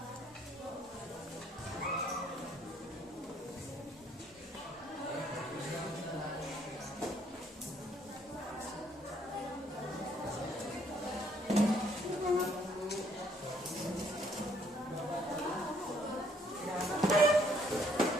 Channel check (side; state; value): both; normal; correlation 0.66